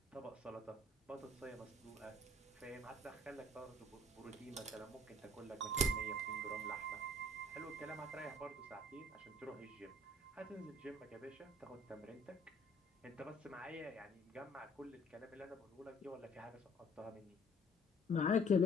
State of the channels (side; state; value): both; normal; correlation 0.56